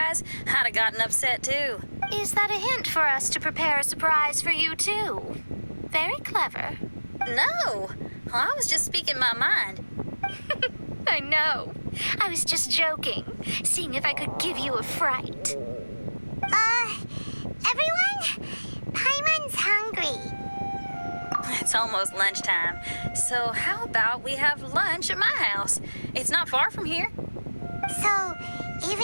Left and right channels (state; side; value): inverted; both; correlation -1.00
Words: I'd have gotten upset too. Is that a hint for us to prepare a surprise for you, too? Very clever. No! I was just speaking my mind. I know. I was just joking, seeing if I could give you a fright. Everyone? Paimon's hungry. It's almost lunchtime, so how about we have lunch at my house? It's not far from here. So,